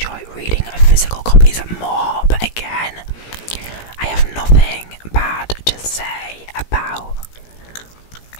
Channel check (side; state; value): right; late; 17 ms